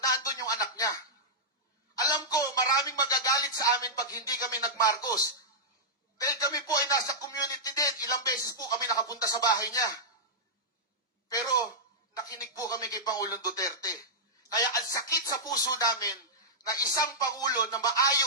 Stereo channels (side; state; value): both; normal; correlation -0.10